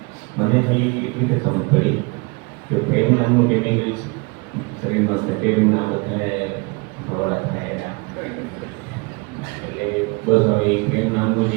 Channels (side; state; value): left; quieter; 28.4 dB